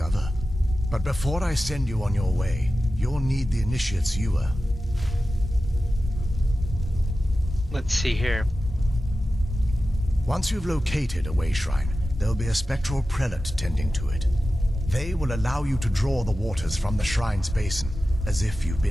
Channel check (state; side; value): normal; both; correlation 0.94